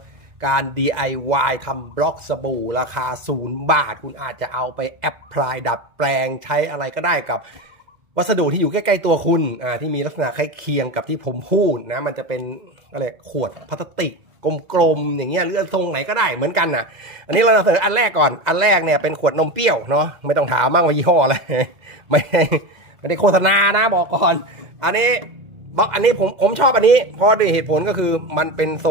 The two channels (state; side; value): late; left; 2.0 ms